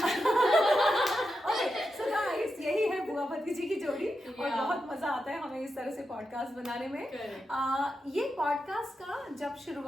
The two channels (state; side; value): normal; both; correlation 0.88